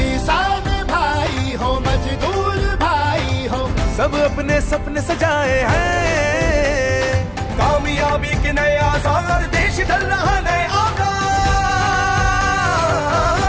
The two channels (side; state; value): both; identical; correlation 1.00